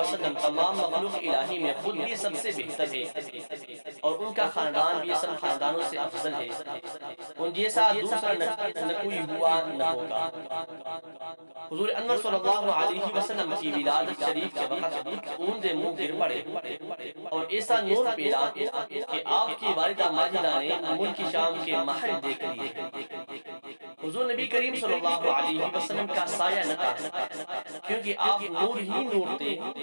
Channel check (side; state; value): both; inverted; correlation -1.00